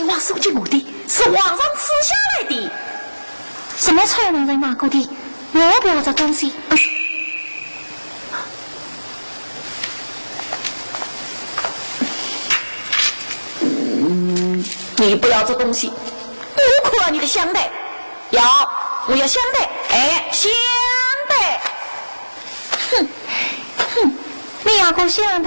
王送给我的，是皇上赐下来的。什么才能人拿过的？我不要这东西。你不要这东西，我可要你的香袋。我要香袋，哎，香袋。你要过香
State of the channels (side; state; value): both; inverted; correlation -1.00